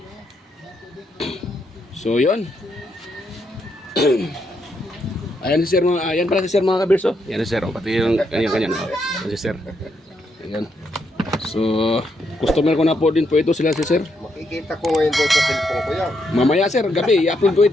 So yun. Ayan si sir mga, ayan pala si sir mga kabirso. Yan si sir, pati yung kanya-kanya. Yan si sir. Ayan. So customer ko na po din po ito sila si sir. Makikita ko ngayon doon sa cellphone ko yan. Mamaya sir, gabi i-upload ko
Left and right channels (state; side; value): normal; both; correlation 0.78